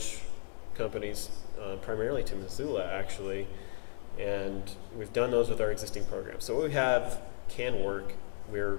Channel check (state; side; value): silent; right; digital silence